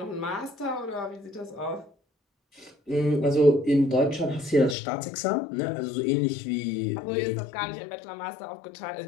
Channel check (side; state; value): right; drops out; at 4.8 s